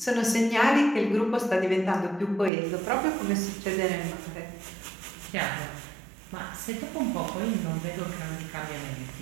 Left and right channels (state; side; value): drops out; left; at 2.5 s